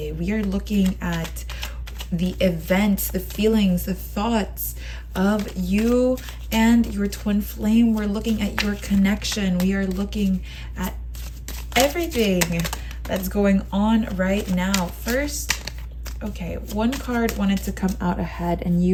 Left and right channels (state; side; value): identical; both; correlation 1.00